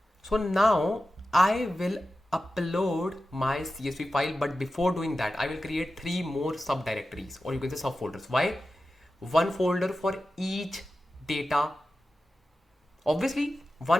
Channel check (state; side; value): normal; both; correlation 0.93